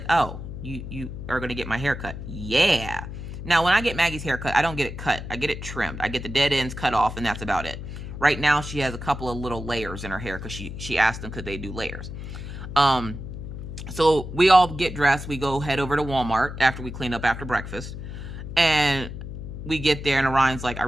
oh, you are going to get my haircut. Yeah. Now, when I get Maggie's haircut, I don't get it cut. I get it trimmed. I get the dead ends cut off, and that's about it. Right now, she has a couple of little layers in her hair because she asked them could they do layers. So we all get dressed. We go head over to Walmart after we clean up after breakfast. And we get there, and Orion's like, I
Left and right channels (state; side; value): noise; left; hum, 9 dB below the sound